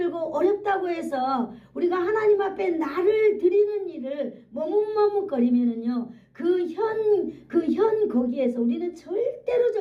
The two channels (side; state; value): both; identical; correlation 1.00